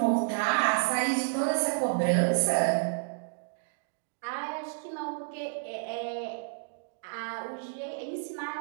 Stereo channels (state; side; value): silent; left; digital silence